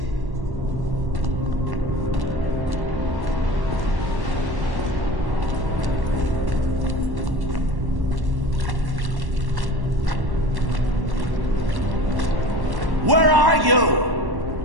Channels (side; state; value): left; late; 1.1 ms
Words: Where are you?